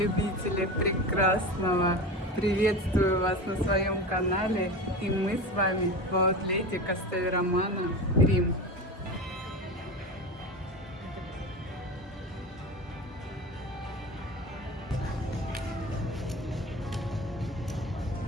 прекрасного, приветствую вас на своем канале, и мы с вами в аутлете Кастель Романо, Рим.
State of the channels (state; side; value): normal; both; correlation 0.28